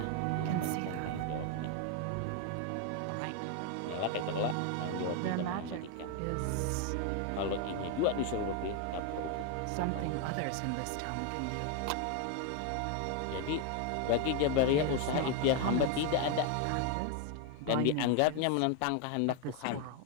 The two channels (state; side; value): different; both; correlation 0.01